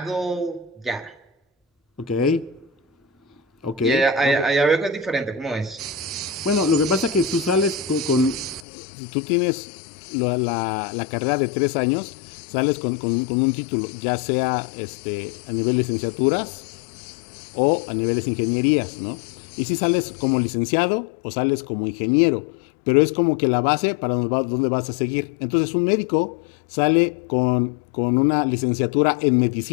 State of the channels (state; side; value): drops out; right; at 8.7 s